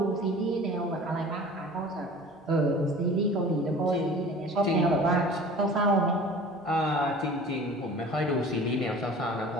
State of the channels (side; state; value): both; normal; correlation 0.43